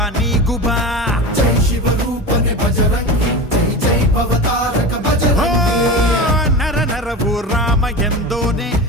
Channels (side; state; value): both; normal; correlation 0.27